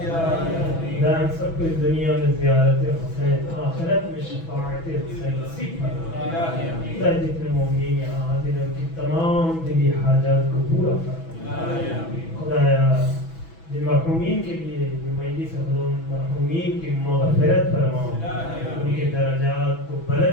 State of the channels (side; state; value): right; late; 6.1 ms